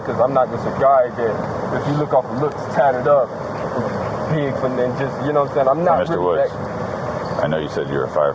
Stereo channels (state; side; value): identical; both; correlation 1.00